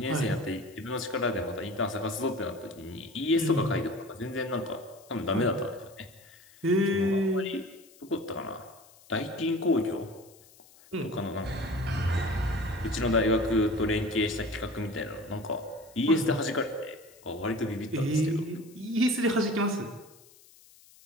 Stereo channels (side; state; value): left; noise; hiss, 25 dB below the sound